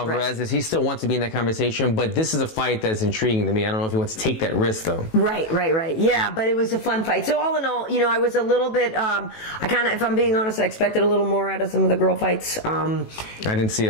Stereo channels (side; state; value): right; late; 18 ms